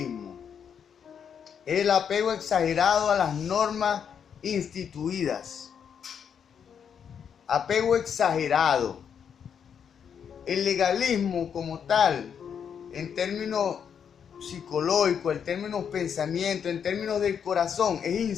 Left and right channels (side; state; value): right; quieter; 7.6 dB